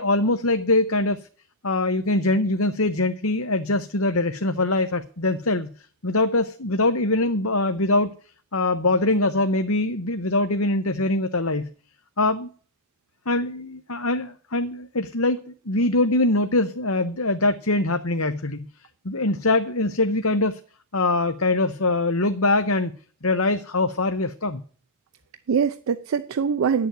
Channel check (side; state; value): both; normal; correlation -0.15